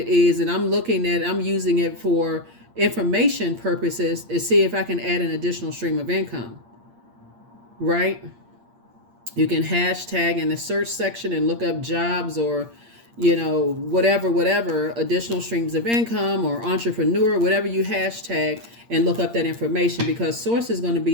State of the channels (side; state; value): left; late; 8.6 ms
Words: is, and I'm using it for information purposes, is see if I can add an additional stream of income, right? You can hashtag in the search section and look up jobs or whatever additional streams of income or entrepreneur, whatever you hashtag, and look up that information, because source is going to